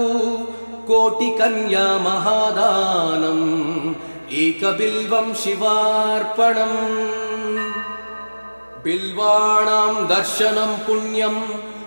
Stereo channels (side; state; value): both; inverted; correlation -1.00